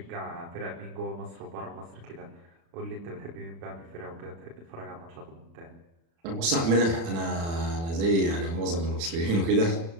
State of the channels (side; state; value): left; late; 36 ms